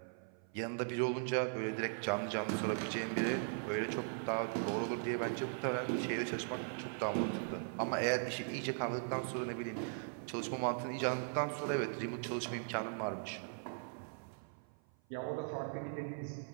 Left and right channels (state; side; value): silent; left; 52 dB below the other